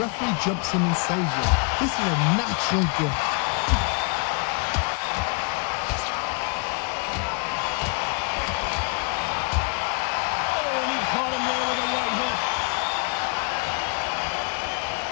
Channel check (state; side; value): quieter; right; 34.8 dB